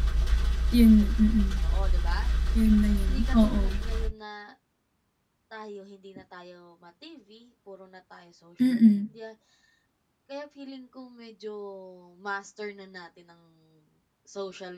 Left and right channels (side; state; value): both; identical; correlation 1.00